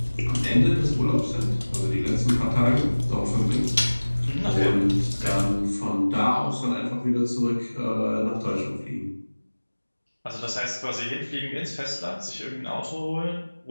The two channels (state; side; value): inverted; both; correlation -1.00